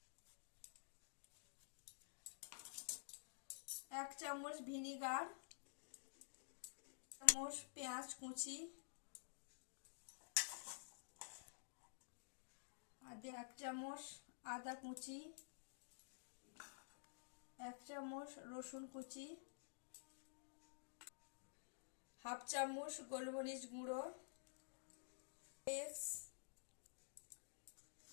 এক চামচ ভিনিগার, চামচ পেঁয়াজ কুচি, আর এক চামচ আদা কুচি, এক চামচ রসুন কুচি, হাফ চামচ গোলমরিচ গুঁড়ো,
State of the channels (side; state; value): right; silent; digital silence